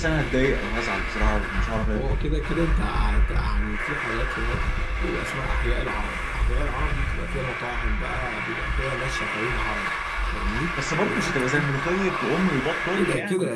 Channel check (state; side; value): identical; both; correlation 1.00